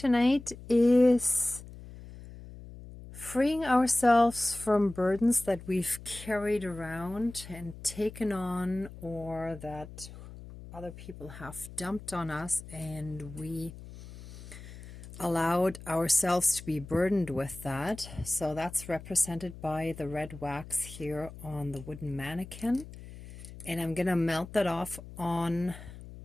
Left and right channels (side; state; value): left; noise; hum, 15 dB below the sound